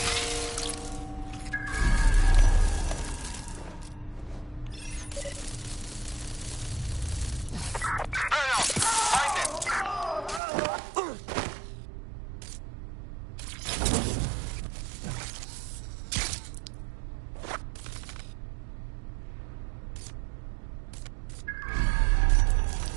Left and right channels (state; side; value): drops out; left; at 10.4 s